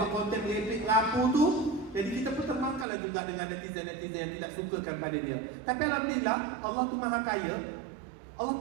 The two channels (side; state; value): left; drops out; at 2.9 s